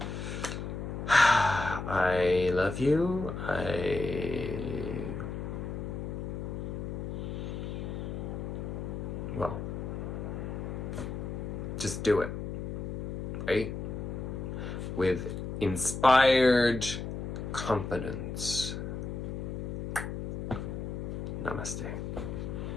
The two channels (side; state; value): left; noise; hum, 5 dB below the sound